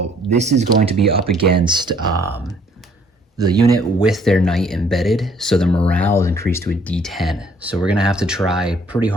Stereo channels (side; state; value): both; normal; correlation 0.61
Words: this is going to be up against the unit with their knight embedded, so the morale is increased to a D10. So we're going to have to try pretty